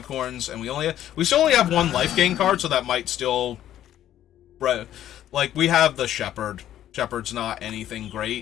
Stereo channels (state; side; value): quieter; right; 11.8 dB